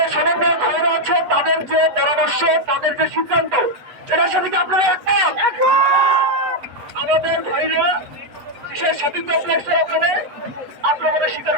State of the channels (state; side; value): late; left; 8.0 ms